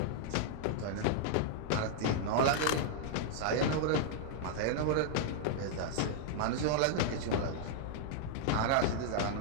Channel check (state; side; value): different; both; correlation -0.01